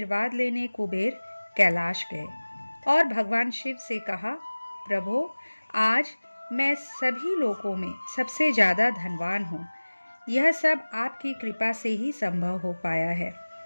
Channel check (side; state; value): both; inverted; correlation -1.00